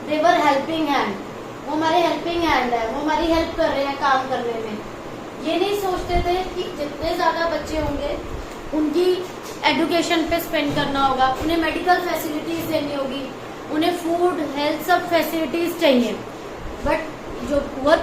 दे वर हेल्पिंग हैंड, वो हमारे हेल्पिंग हैंड है, वो हमारी हेल्प कर रहे हैं काम करने में। ये नहीं सोचते थे कि जितने ज्यादा बच्चे होंगे उनकी एजुकेशन पे स्पेंड करना होगा, उन्हें मेडिकल फैसिलिटीज देनी होगी, उन्हें फूड, हेल्थ, सब फैसिलिटीज चाहिए। बट जो पुअर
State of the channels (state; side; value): identical; both; correlation 1.00